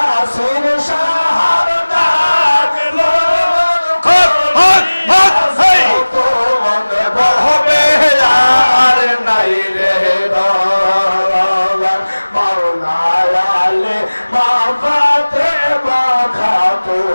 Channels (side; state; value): both; inverted; correlation -1.00